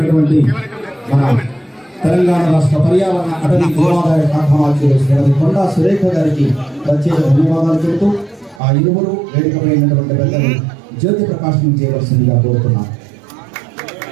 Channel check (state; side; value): drops out; left; at 8.6 s